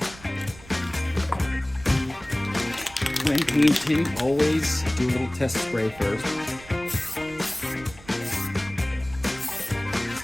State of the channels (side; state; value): right; noise; rumble, 20 dB below the sound